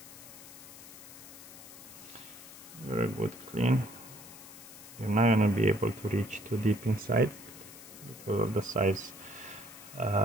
very good, clean. You're not gonna be able to reach too deep inside because of the size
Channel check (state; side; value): noise; left; hiss, 16 dB below the sound